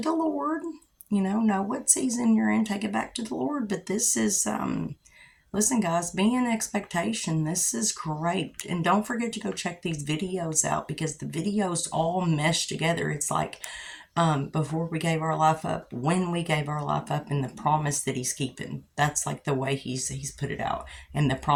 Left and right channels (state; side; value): identical; both; correlation 1.00